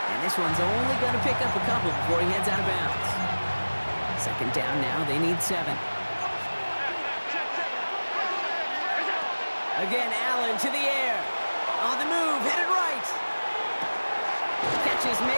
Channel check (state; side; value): inverted; both; correlation -1.00